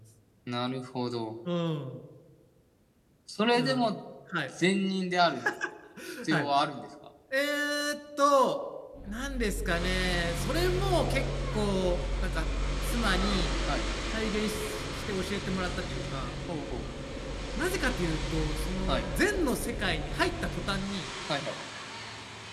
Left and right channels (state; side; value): identical; both; correlation 1.00